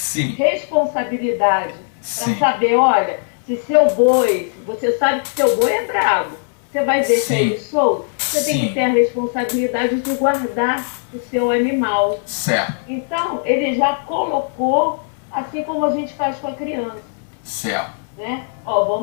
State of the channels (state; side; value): silent; right; 62 dB below the other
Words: Responsabilidade. Sim. Para saber, olha, se seu boi, você sabe que seu boi é bravo, você vai deixar Sim. ele solto? Você tem Sim. que ter a responsabilidade de guardar o seu animal. Certo. Então, ele já colocou, assim como a gente faz com a criança. Certo. Né?